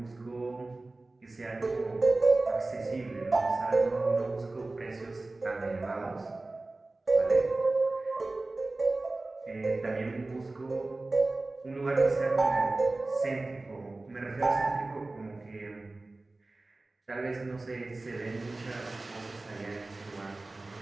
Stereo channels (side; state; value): left; quieter; 3.1 dB